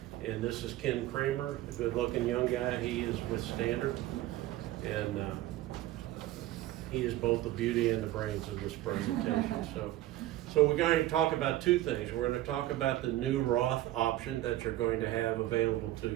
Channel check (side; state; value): left; quieter; 15.3 dB